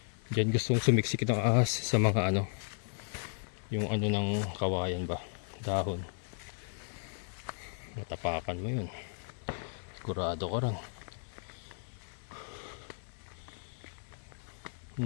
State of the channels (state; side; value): silent; right; digital silence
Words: Diyan gustong sumiksik ng ahas sa mga ano. Yung ano ng kawayan ba. Dahon. Matapakan mo yun. Sigurado ko rin.